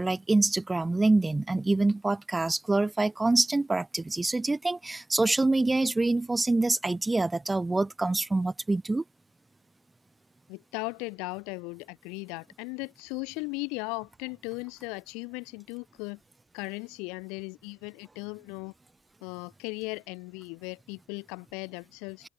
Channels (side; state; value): both; normal; correlation 0.91